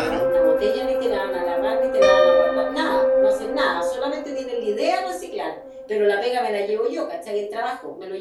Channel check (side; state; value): both; identical; correlation 1.00